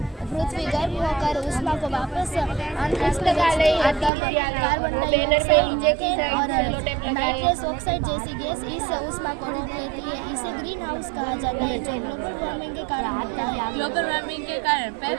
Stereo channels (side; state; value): left; drops out; at 4.1 s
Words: पृथ्वी गर्म होकर उष्मा को वापस अंतरिक्ष में लगा ले, भेजती है, तब कार्बन बैनर पे डाइऑक्साइड नीचे की मीथेन और साइड सेलो टेप लगाए। नाइट्रस ऑक्साइड जैसी गैस इस उष्मा को रोक लेती है। इसे ग्रीन हाउस कहा जाता है, जो ग्लोबल वार्मिंग के कारण होता है। ग्लोबल वार्मिंग के कारण